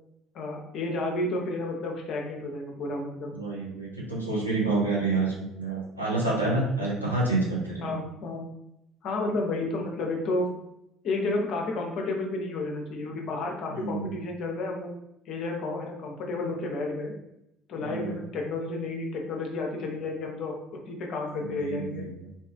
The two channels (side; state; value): both; normal; correlation 0.37